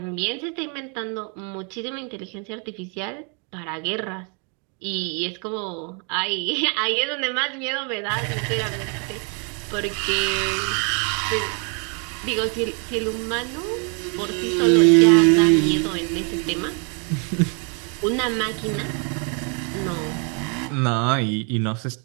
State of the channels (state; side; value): quieter; left; 37.2 dB